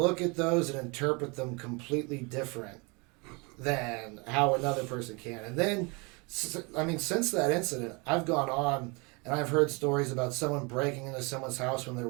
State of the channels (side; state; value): left; quieter; 29.3 dB